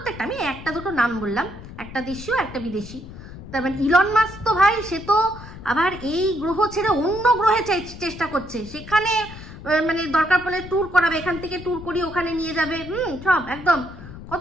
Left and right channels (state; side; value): noise; left; rumble, 14 dB below the sound